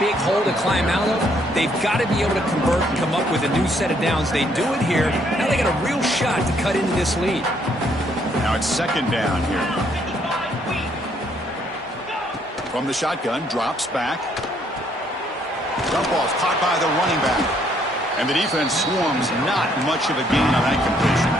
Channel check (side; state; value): both; normal; correlation 0.68